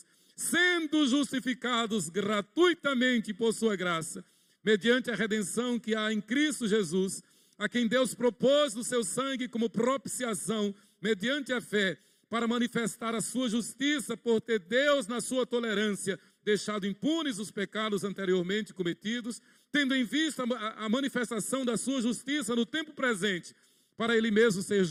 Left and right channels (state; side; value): identical; both; correlation 1.00